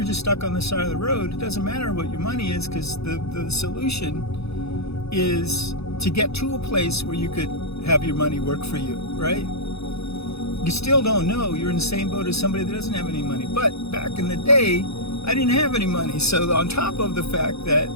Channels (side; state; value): right; late; 0.79 ms